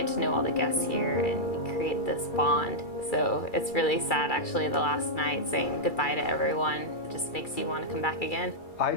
to know all the guests here and you create this bond. So it's really sad actually the last night saying goodbye to everyone. It just makes you want to come back again. I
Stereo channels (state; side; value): late; right; 2.3 ms